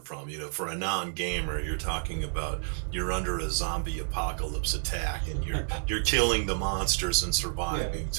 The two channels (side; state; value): left; silent; digital silence